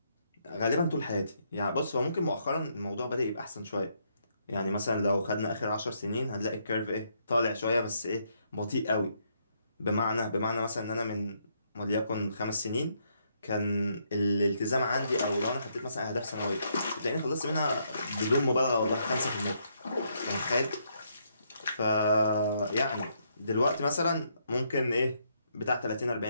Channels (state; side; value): inverted; both; correlation -0.74